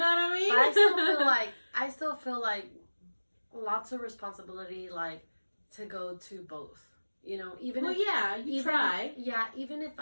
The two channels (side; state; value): both; inverted; correlation -1.00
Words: what I mean? But I still feel like lots of responsibility, like, to go to both. You know, even try. Yeah, even if